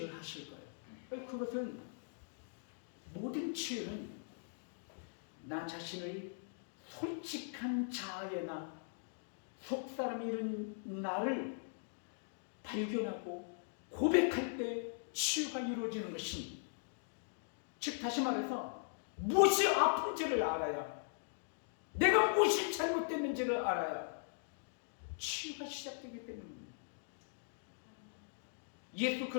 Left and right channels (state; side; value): silent; right; digital silence